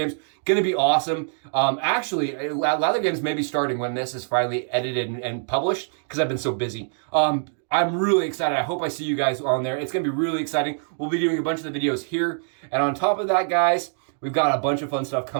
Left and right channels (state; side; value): silent; left; digital silence